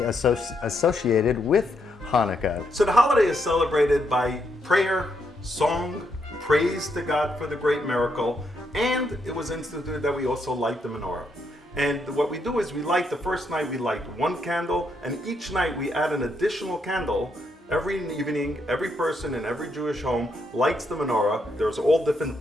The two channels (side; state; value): both; normal; correlation 0.78